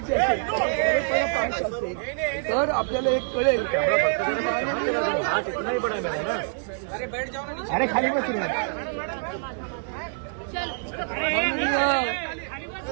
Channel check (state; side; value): silent; left; digital silence